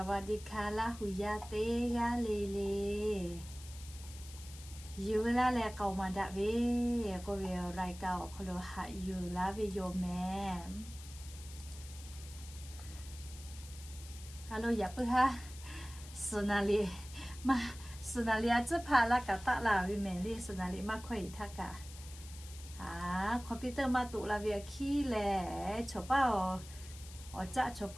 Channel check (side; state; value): left; noise; hiss, 16 dB below the sound